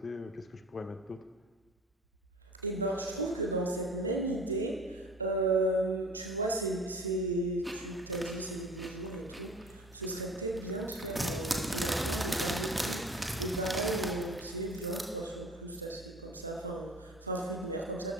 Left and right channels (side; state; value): both; normal; correlation 0.42